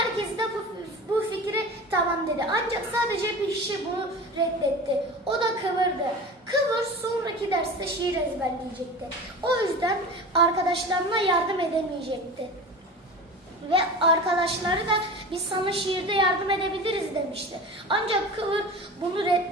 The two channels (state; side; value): normal; both; correlation 0.33